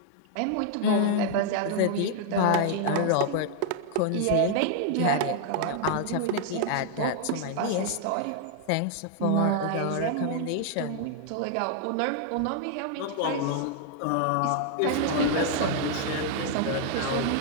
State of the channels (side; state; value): both; different; correlation 0.00